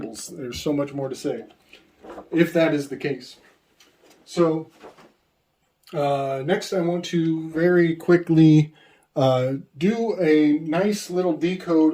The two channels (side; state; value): both; identical; correlation 1.00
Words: There's so much more to say, if that is the case. So next I want to very quickly do a nice little